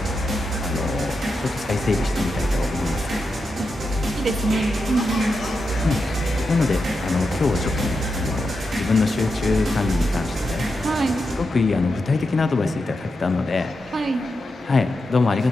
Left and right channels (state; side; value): normal; both; correlation 0.87